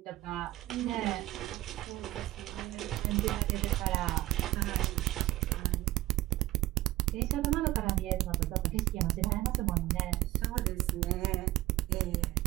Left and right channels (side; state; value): left; quieter; 17.3 dB